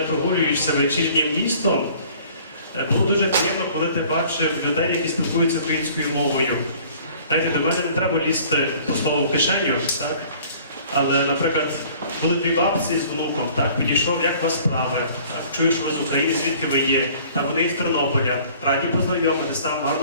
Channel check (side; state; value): both; inverted; correlation -0.52